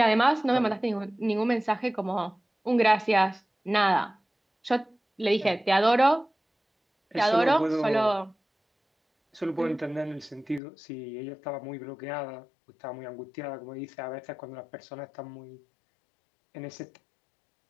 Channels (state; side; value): drops out; right; at 10.6 s